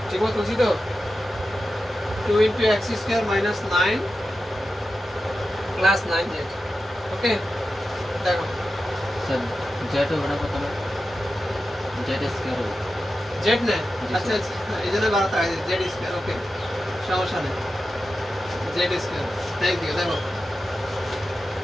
ঠিক মতো বুঝি তো? 2 × x² - 9 প্লাস 9z। ওকে, দেখো স্যার জেড হবে না কত না জেড স্কয়ার হবে জেড না। আচ্ছা আচ্ছা, এই জন্য বাড়াতে হয় জেড স্কয়ার। ওকে, সমস্যা নেই, জেড স্কয়ার। Thank you. দেখো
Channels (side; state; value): both; normal; correlation 0.92